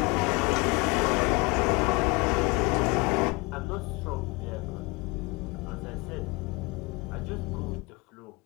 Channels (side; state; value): right; quieter; 26.3 dB